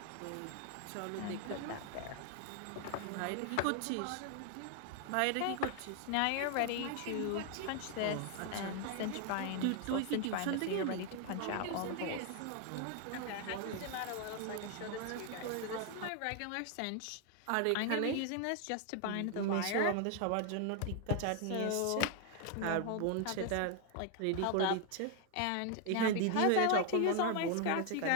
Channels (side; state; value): both; different; correlation 0.00